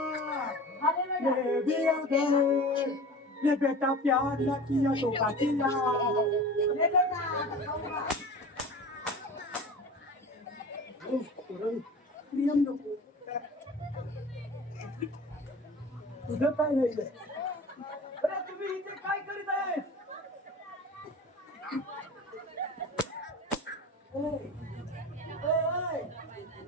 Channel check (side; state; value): both; normal; correlation 0.37